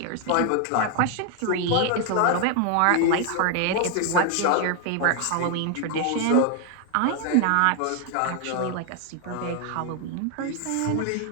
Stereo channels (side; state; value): both; different; correlation 0.00